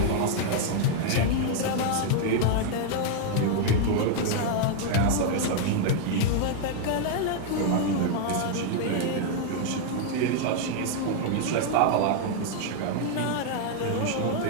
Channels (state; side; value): different; both; correlation 0.00